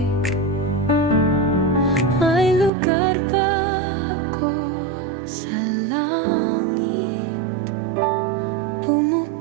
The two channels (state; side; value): drops out; left; at 2.7 s